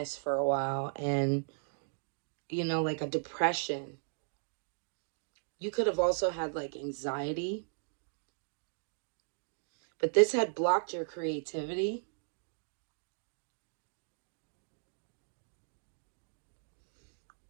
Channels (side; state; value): left; silent; digital silence